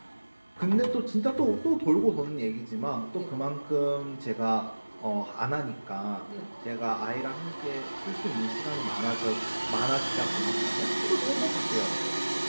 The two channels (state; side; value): inverted; both; correlation -1.00